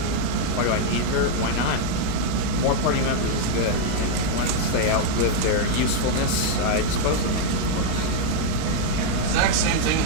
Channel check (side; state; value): both; different; correlation 0.00